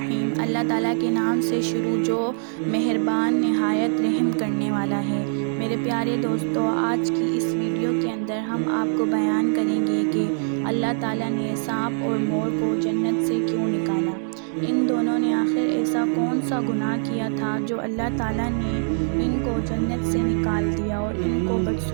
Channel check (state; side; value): silent; left; 63 dB below the other